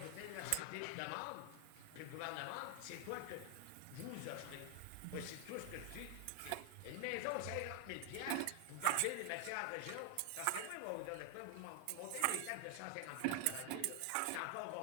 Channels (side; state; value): both; different; correlation 0.00